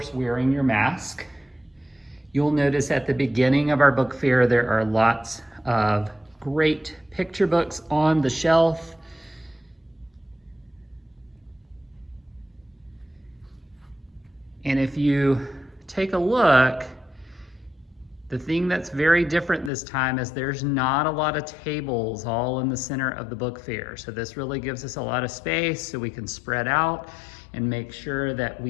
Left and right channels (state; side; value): drops out; right; at 19.7 s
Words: wearing your mask. You'll notice at the beginning of our book fair, there are lots of great picture books on the shelf. And if you take a look, the thing that's very different this time is there's not a lot of tables all in the center of the book fair. So this really gives us a lot of space so we can spread out and make sure that